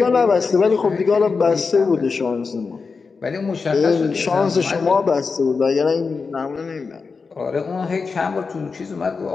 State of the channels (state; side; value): quieter; right; 4.8 dB